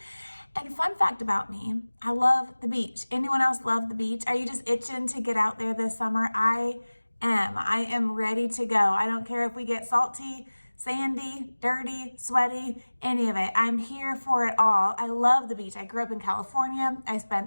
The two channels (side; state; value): both; inverted; correlation -1.00